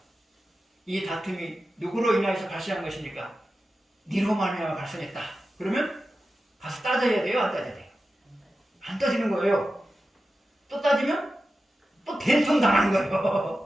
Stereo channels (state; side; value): normal; both; correlation 0.93